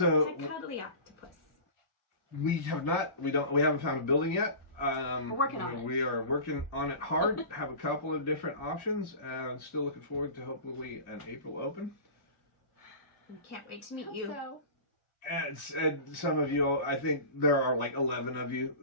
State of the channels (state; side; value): late; right; 1.4 ms